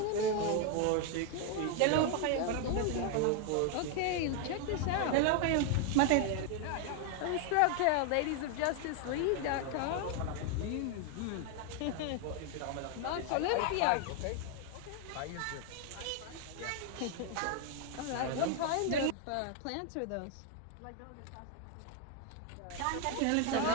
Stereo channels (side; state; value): both; different; correlation 0.01